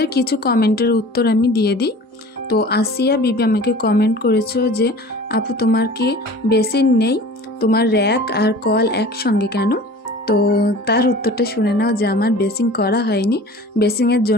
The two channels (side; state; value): both; normal; correlation 0.42